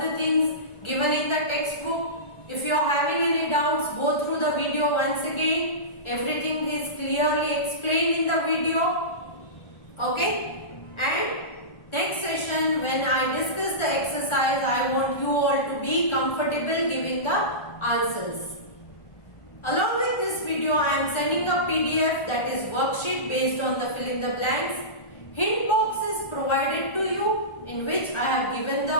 things given in the textbook. If you are having any doubts, go through the video once again. Everything is clearly explained in the video. Okay? And next session, when I discuss the exercise, I want you all to be comfortable giving the answers. Along with this video, I am sending a PDF, that is worksheet based on the fill in the blanks. Hint box is provided to you in which I have given the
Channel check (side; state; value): right; late; 1.4 ms